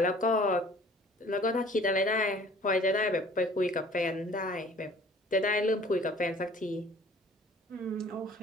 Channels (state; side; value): normal; both; correlation 0.51